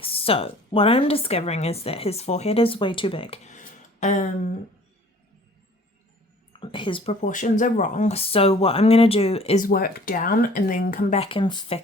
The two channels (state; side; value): normal; both; correlation 0.51